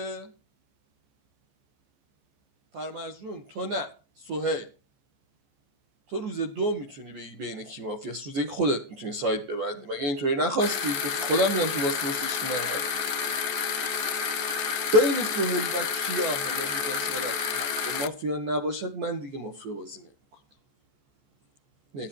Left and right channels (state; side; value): late; left; 14 ms